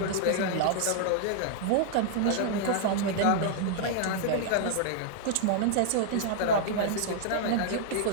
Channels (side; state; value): both; different; correlation -0.01